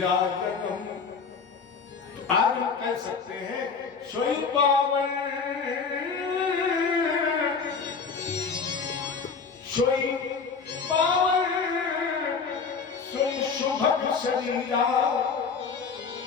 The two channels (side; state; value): right; quieter; 5.3 dB